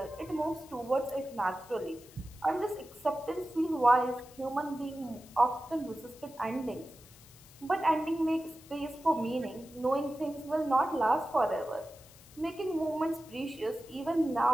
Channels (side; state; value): left; noise; hiss, 22 dB below the sound